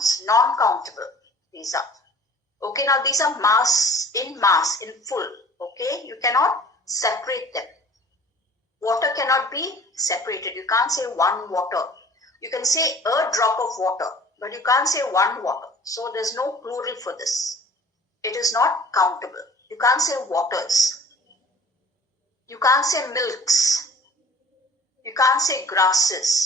Non-countable. These are. Okay, now these are mass, in full. Okay, you cannot separate them. Water cannot be separated. You can't say one water. You can say a drop of water, but you can't say one water. So there's no plural for this. It is not countable. You can't say waters. You can't say milks. You can't say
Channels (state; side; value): normal; both; correlation 0.47